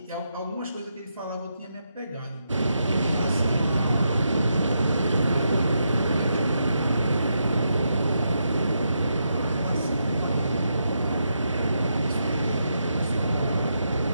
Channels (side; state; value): both; inverted; correlation -0.82